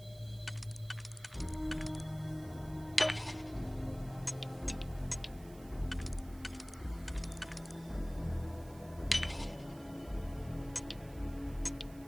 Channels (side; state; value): right; noise; hiss, 22 dB below the sound